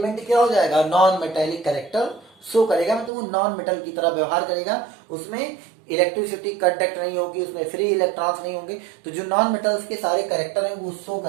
क्या हो जाएगा, नॉन मेटेलिक कैरेक्टर शो करेगा, मतलब वो नॉन मेटल की तरह व्यवहार करेगा, उसमें इलेक्ट्रिसिटी कंडक्ट नहीं होगी, उसमें फ्री इलेक्ट्रॉन्स नहीं होंगे। तो जो नॉन मेटल्स के सारे कैरेक्टर हैं वो शो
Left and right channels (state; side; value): drops out; left; at 3.1 s